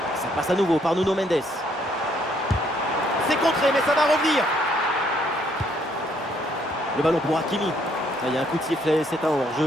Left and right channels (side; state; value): both; normal; correlation 0.68